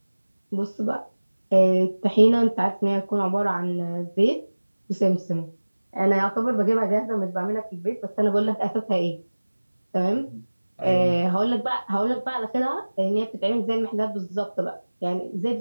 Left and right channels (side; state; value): both; inverted; correlation -1.00